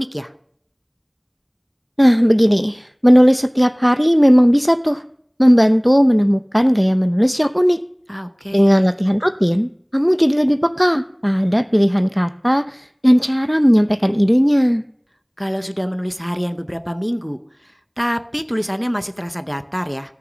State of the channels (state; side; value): identical; both; correlation 1.00